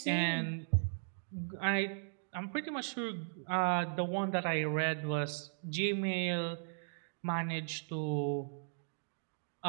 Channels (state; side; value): silent; left; digital silence